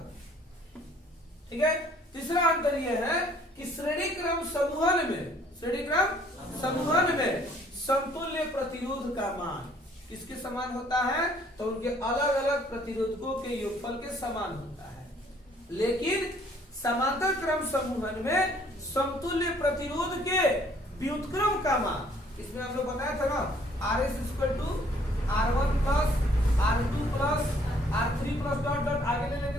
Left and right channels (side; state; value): both; normal; correlation 0.60